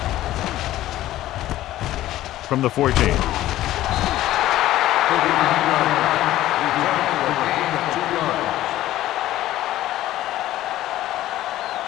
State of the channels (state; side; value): quieter; right; 14.6 dB